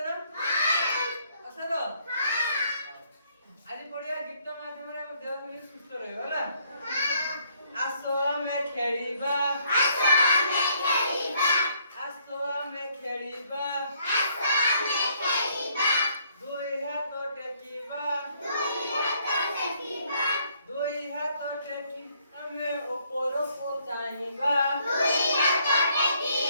ନା? ଅଛ ତ? ଆଜି ପଢିବା ଗୀତ ମାଧ୍ୟମରେ ଆମ ଦେହ କେମିତି ସୁସ୍ଥ ରହିବ ହେଲା? ଆସ ଆମେ ଖେଳିବା, ଆସ ଆମେ ଖେଳିବା, ଦୁଇ ହାତ ଟେକିବା, ଆମେ ଉପରକୁ ଚାହିଁବା,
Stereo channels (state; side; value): inverted; both; correlation -0.68